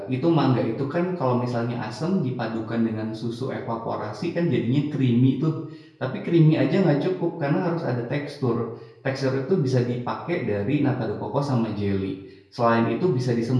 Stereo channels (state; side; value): identical; both; correlation 1.00